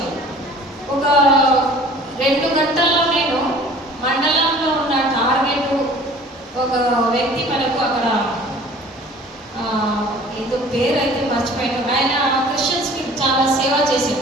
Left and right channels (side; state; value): both; normal; correlation 0.48